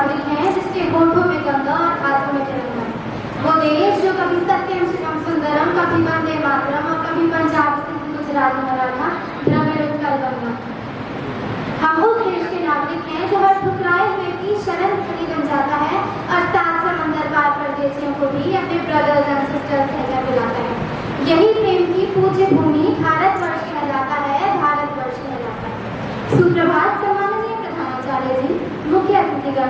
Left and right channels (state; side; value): identical; both; correlation 1.00